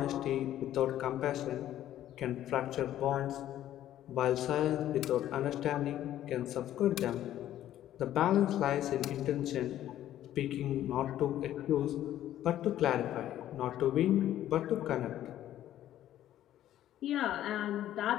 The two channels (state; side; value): quieter; right; 12.4 dB